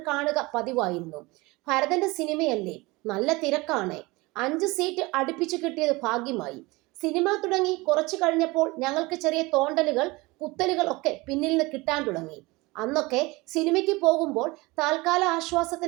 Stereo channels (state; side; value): quieter; left; 23.0 dB